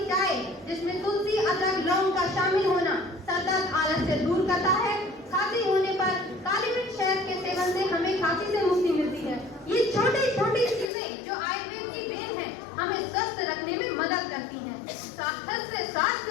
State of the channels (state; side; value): drops out; right; at 10.9 s